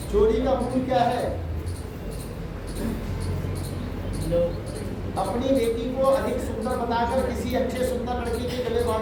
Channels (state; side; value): identical; both; correlation 1.00